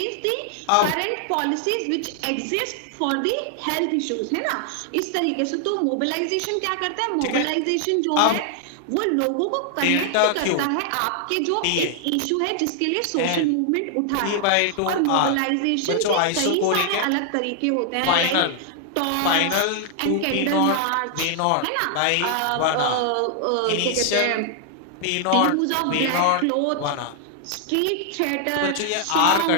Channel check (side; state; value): both; different; correlation 0.00